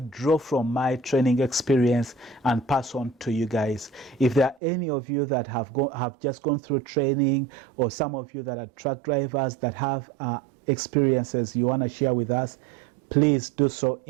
draw from my training experience and pass on to you guys. If there are any of you that have just gone through training, or some of you that are truck drivers that have experiences you want to share with us, please do so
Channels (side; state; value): left; drops out; at 4.6 s